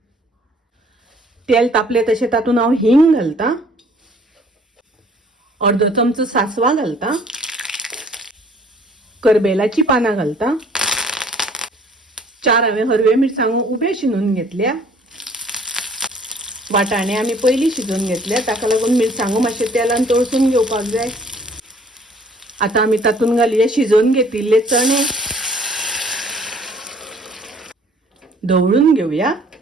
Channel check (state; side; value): normal; both; correlation 0.57